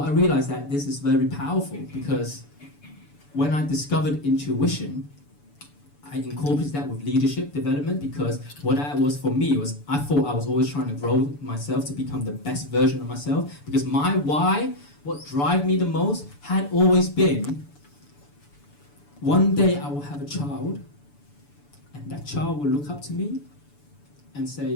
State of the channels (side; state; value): right; late; 6.9 ms